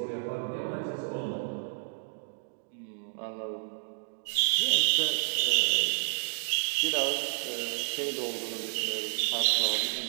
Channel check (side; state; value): left; silent; digital silence